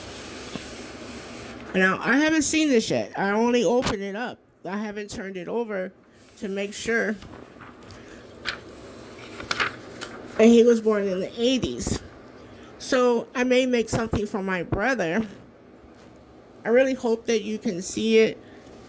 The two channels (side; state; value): both; identical; correlation 1.00